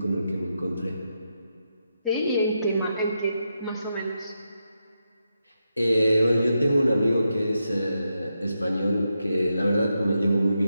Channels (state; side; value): inverted; both; correlation -0.85